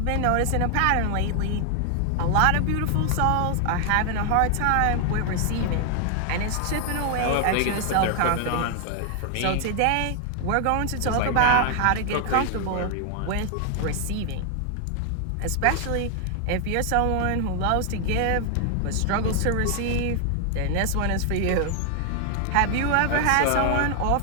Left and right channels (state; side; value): different; both; correlation 0.00